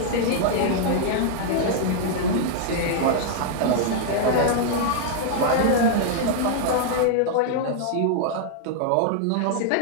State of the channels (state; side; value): different; both; correlation -0.01